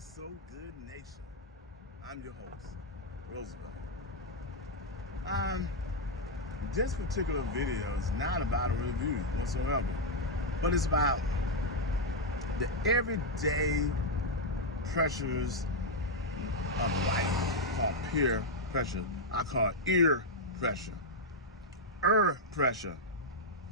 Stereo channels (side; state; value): both; normal; correlation -0.01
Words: so good, nation. I'm your host, Roosevelt. This particular video is not about a review whatsoever, but it's about the everyday pressures of life called peer pressure. I call it ear pressure, pressure,